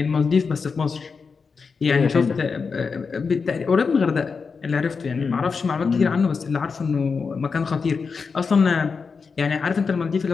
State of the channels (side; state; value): right; quieter; 5.2 dB